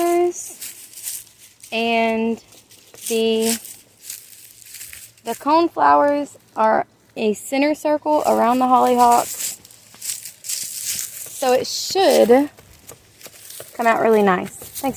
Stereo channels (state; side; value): identical; both; correlation 1.00